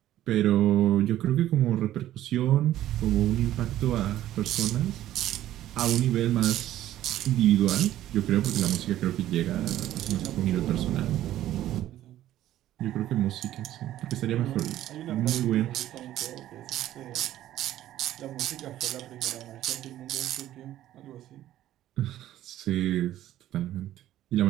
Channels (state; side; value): quieter; left; 13.2 dB